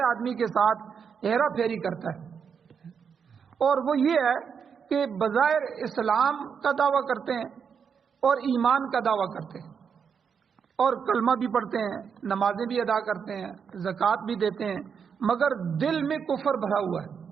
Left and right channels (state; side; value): quieter; left; 6.7 dB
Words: آدمی کے ساتھ ہیرا پھیری کرتا ہے. اور وہ یہ ہے کہ بظاہر اسلام کا دعویٰ کرتے ہیں اور ایمان کا دعویٰ کرتے ہیں اور کلمہ بھی پڑھتے ہیں، نمازیں بھی ادا کرتے ہیں، زکوٰۃ بھی دیتے ہیں، مگر دل میں کفر بھرا ہوا ہے.